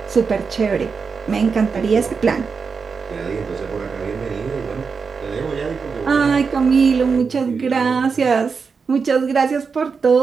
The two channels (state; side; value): quieter; left; 5.3 dB